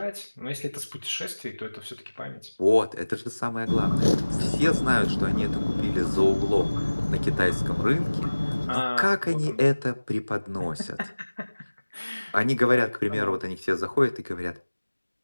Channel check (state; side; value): inverted; both; correlation -1.00